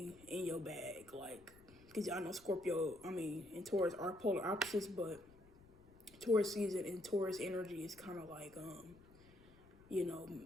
in your bag, like, because I know Scorpio, I mean, and Taurus are polar opposites, but Taurus season and Taurus energy is kind of like you know,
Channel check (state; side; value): noise; left; rumble, 24 dB below the sound